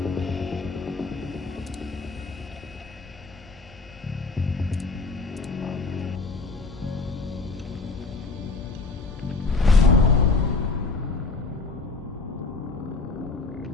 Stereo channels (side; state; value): right; quieter; 3.8 dB